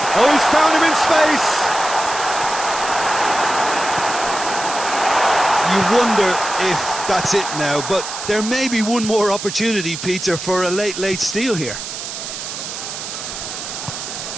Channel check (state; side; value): noise; right; hiss, 7 dB below the sound